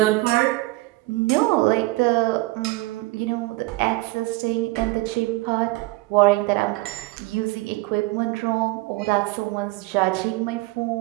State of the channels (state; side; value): quieter; left; 21.4 dB